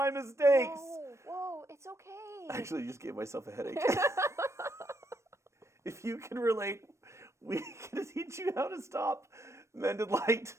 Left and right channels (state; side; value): late; left; 0.13 ms